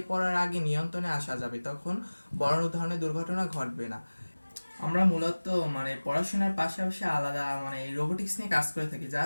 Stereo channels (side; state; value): both; inverted; correlation -1.00